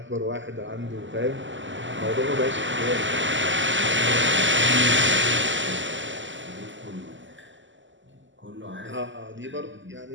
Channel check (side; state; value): left; late; 0.54 ms